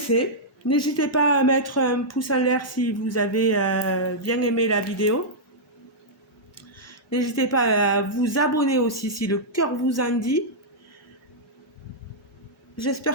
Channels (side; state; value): both; normal; correlation -0.09